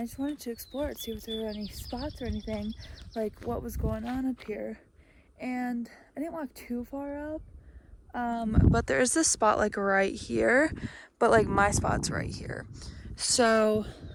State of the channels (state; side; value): identical; both; correlation 1.00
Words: just wanted to explore it, see if there were any spots or anything, like what was going on up here. And I didn't walk too far up, but there's this spot like right here, but like my spot's right here. So